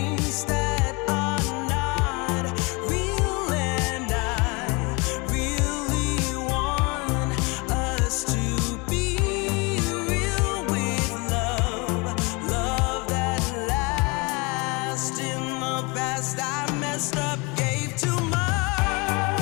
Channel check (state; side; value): quieter; right; 28.2 dB